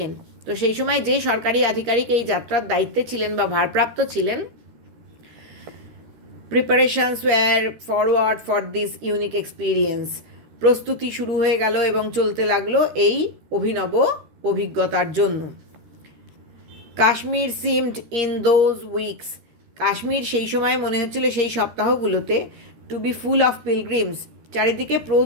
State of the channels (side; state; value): left; late; 13 ms